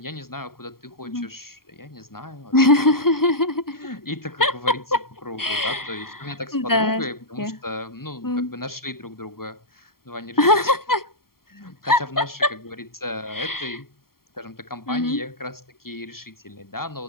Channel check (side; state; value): right; late; 0.93 ms